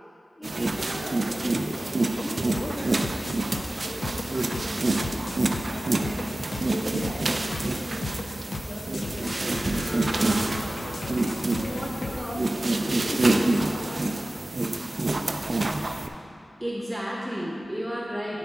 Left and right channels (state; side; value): normal; both; correlation 0.96